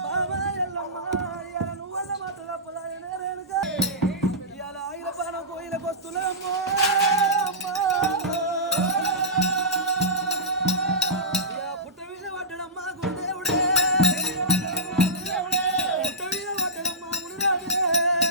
ఇవాళ ఆయన బాణం కోయిలకు వస్తున్నామ్మో అమ్మా పుట్ట మీద పడ్డడమ్మా గురుదేవుడే పుట్ట మీద పడ్డడమ్మా మునిరాజే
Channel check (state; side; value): normal; both; correlation -0.16